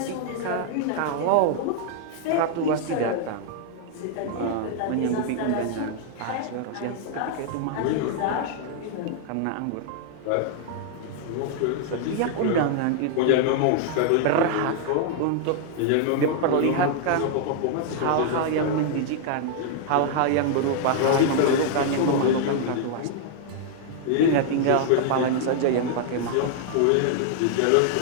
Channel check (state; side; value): different; both; correlation -0.01